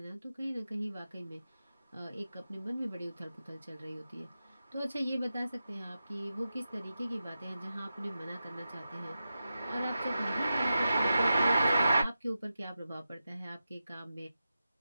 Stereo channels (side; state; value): both; inverted; correlation -0.91